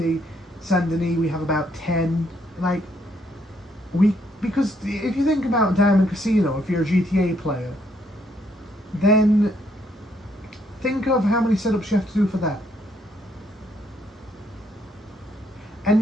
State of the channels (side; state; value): both; normal; correlation 0.71